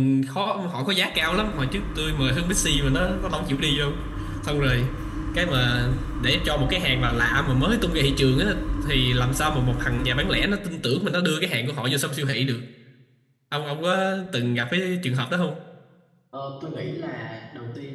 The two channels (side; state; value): both; identical; correlation 1.00